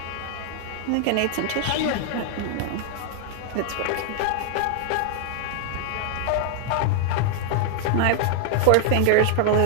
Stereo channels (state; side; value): different; both; correlation 0.00